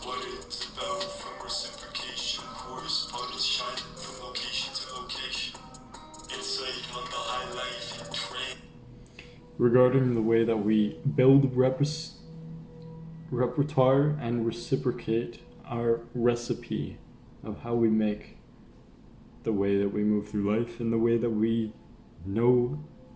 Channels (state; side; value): identical; both; correlation 1.00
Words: what it's about, from reciprocation, correspondence shine from location to location. Insight on the high life and train. Regarding the way that we build repertoire and reciprocate our recipe of how we make the way that we move through life and the way that we know